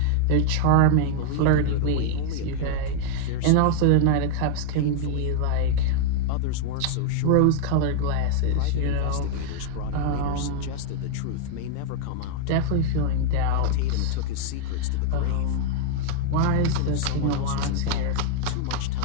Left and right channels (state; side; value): different; both; correlation 0.00